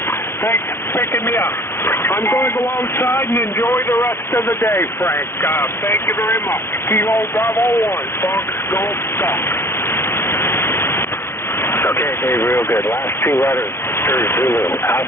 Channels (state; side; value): late; right; 0.12 ms